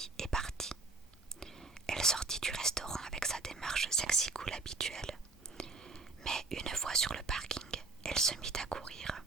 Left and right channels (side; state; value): left; quieter; 3.5 dB